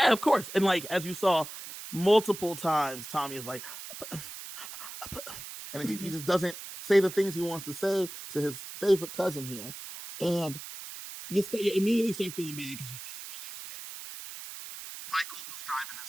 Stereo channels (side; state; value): right; noise; hiss, 11 dB below the sound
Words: of course. And like, as you saw multiple times, Tommy is like, and he just doesn't say the things he wants to say to his favorite cousin here. And you immediately start feeling bad because you realize that Michael, who's driving